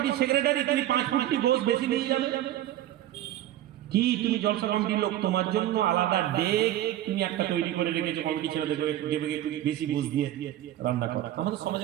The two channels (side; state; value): left; quieter; 13.2 dB